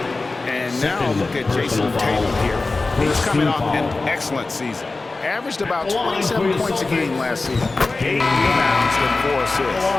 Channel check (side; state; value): right; quieter; 3.5 dB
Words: And now look at Jason Tatum here. He's coming off an excellent season. Averaged about 27 points a game last season. 8 rebounds and 4 assists.